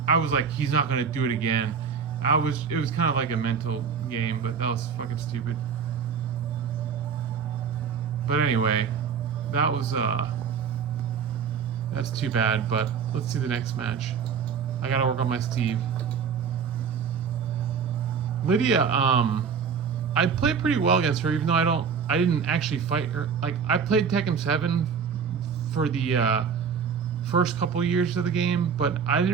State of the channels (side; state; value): left; quieter; 6.5 dB